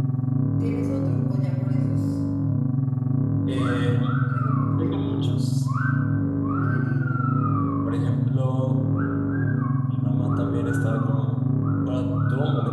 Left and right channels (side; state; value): both; identical; correlation 1.00